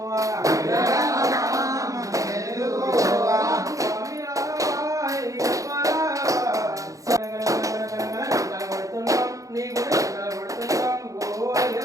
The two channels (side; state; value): left; late; 0.16 ms